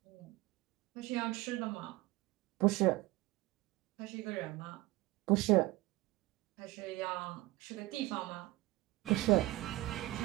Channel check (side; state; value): left; quieter; 19.4 dB